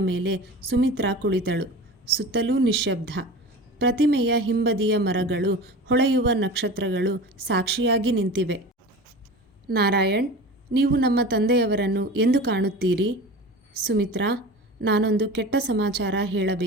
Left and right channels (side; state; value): both; normal; correlation 0.34